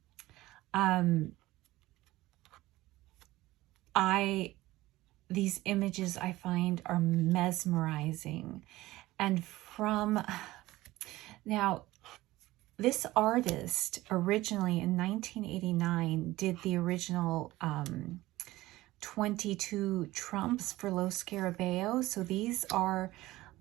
These images I find are mesmerizing. And now, this artist originally in 1989 did the original 22 trumps for Lo Scarabeo. So these are,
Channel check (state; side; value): quieter; left; 17.7 dB